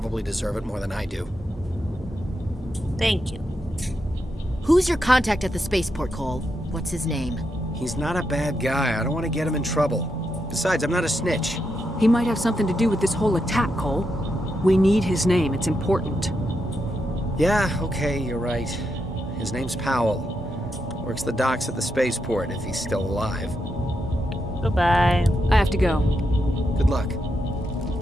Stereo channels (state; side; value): normal; both; correlation 0.84